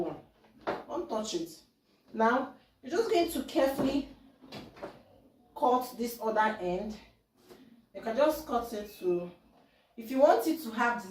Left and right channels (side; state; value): both; identical; correlation 1.00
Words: Don't touch it. Now you're just going to carefully cut this other end. You can just cut it to, if you want it to have